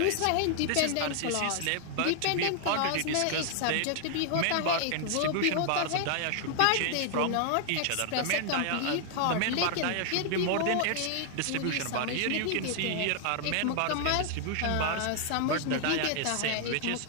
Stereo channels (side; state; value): both; different; correlation 0.00